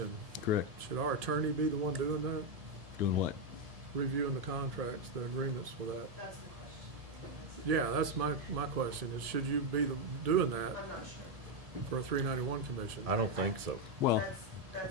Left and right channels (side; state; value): left; late; 1.7 ms